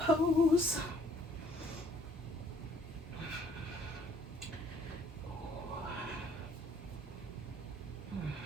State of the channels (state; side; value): normal; both; correlation 0.61